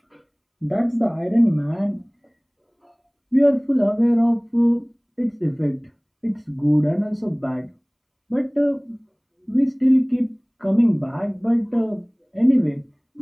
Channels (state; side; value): identical; both; correlation 1.00